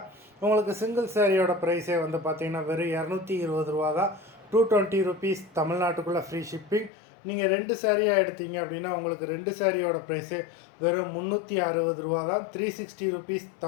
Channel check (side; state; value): right; drops out; at 6.9 s